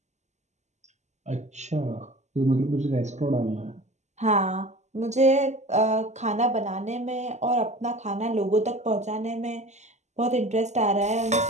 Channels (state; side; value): late; left; 0.33 ms